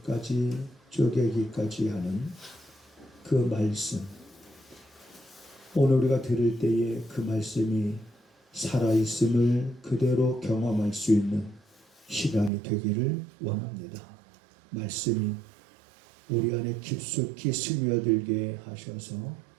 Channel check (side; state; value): left; drops out; at 12.5 s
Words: 쪼개기까지 하는 그 말씀, 오늘 우리가 들을 때에 그 말씀이 살아있음을 그대로 경험할 수 있는 시간이 되기를 원합니다. 말씀이 우리 안에 깊숙이 스며들게 하셔서